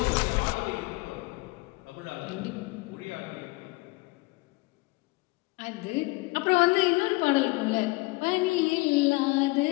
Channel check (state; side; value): quieter; right; 23.7 dB